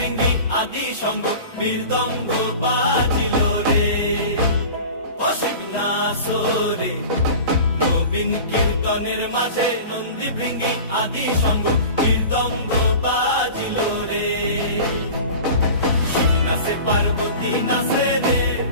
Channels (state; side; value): inverted; both; correlation -0.37